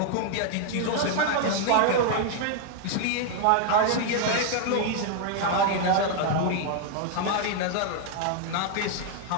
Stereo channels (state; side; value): different; both; correlation 0.00